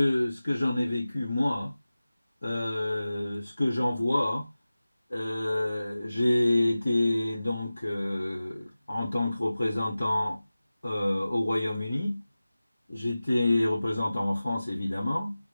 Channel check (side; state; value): both; inverted; correlation -0.96